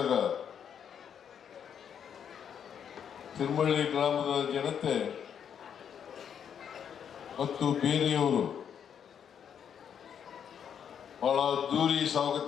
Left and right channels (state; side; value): quieter; right; 8.2 dB